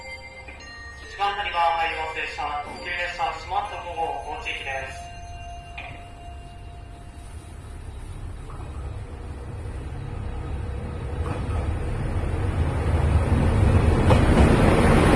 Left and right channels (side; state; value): both; identical; correlation 1.00